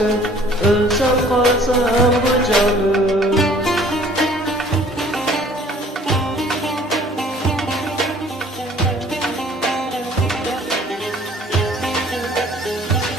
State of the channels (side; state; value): both; normal; correlation 0.54